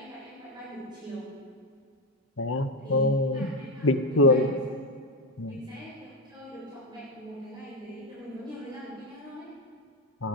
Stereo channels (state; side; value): normal; both; correlation 0.11